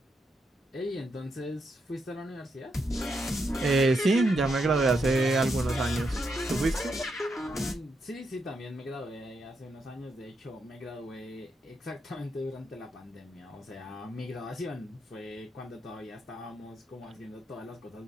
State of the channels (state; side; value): normal; both; correlation 0.81